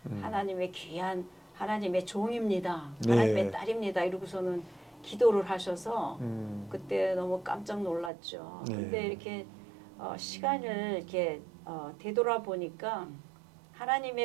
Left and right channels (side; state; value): left; drops out; at 8.1 s